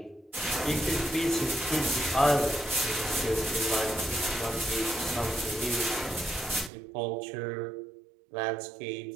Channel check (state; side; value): drops out; left; at 6.7 s